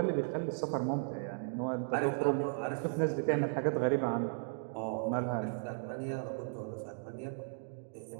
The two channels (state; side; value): silent; left; digital silence